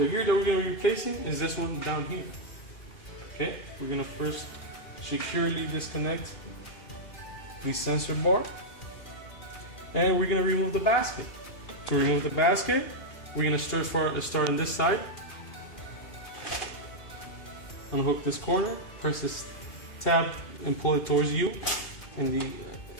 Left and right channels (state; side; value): late; right; 2.8 ms